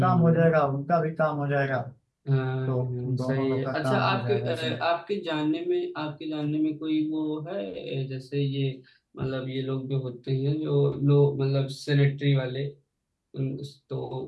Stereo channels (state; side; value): identical; both; correlation 1.00